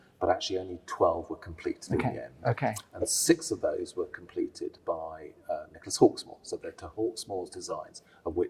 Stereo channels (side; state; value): both; identical; correlation 1.00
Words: but actually only 12 were completed in the end. Okay. And 6 of those were completed by Nicholas Hawksmoor. So they're to Hawksmoor's designs, of